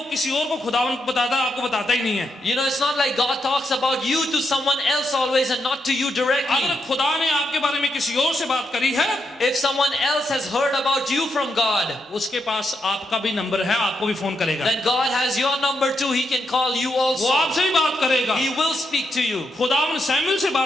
किसी और को खुदावन को बताता है, आपको बताता ही नहीं है। You know, it's not like God talks about you to someone else always and not to you directly. अगर खुदा ने आपके बारे में किसी और से बात करी है, If someone else has heard about you from God, उसके पास आपका भी नंबर है, आपको भी फोन करेगा। then God has your number too. He can call you वो also. आपसे भी बात करेगा। He will speak to you. खुदावन सैमुएल से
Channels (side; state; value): both; normal; correlation 0.82